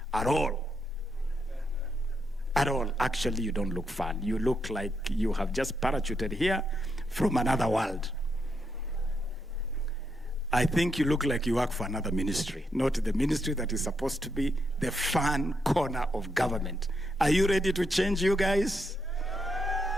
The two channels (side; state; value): both; normal; correlation 0.80